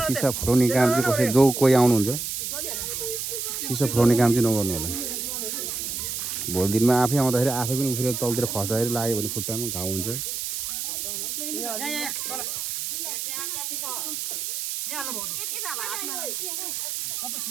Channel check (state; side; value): noise; right; hiss, 4 dB below the sound